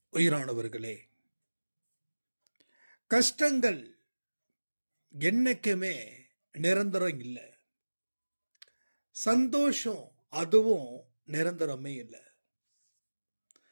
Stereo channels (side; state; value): both; inverted; correlation -1.00